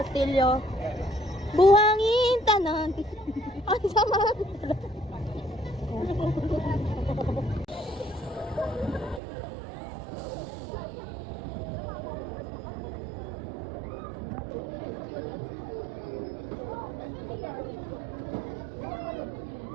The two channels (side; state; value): left; drops out; at 9.2 s